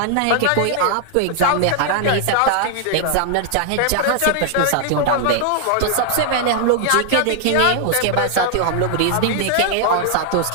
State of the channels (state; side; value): different; both; correlation 0.00